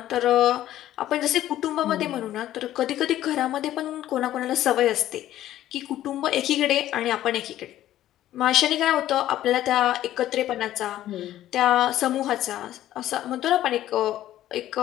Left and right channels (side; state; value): right; quieter; 13.2 dB